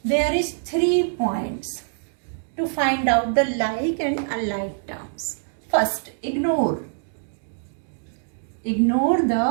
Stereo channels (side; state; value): left; silent; digital silence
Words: there is 3 points to find out the like and unlike terms. First, ignore